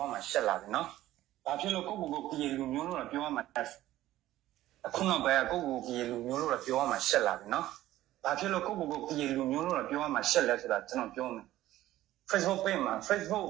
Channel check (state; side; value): quieter; left; 14.7 dB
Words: ရမှာရှက်လာတယ်နော်ဘာဖြစ်လို့ကိုပြေလူမျိုးလို့ပြောရမှာအခုနောက်ပိုင်းကိုပြေလူမျိုးလို့ပြောရမှာရှက်လာတယ်နော်ဘာဖြစ်လို့ကိုပြေလူမျိုးလို့ပြောရမှာရှက်လဲဆိုတာကျွန်တော်ပြောမယ် Facebook page မှာ Facebook